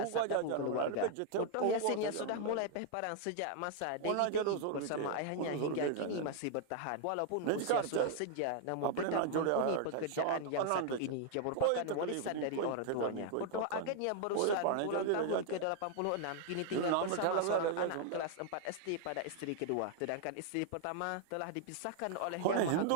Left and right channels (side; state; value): both; different; correlation 0.00